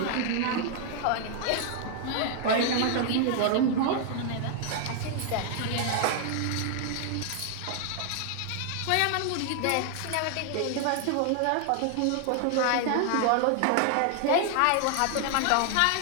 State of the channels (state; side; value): different; both; correlation 0.00